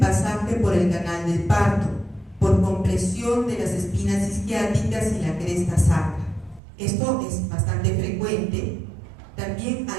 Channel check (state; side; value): drops out; left; at 6.6 s